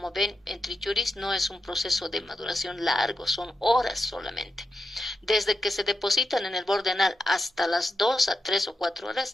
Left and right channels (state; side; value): normal; both; correlation 0.87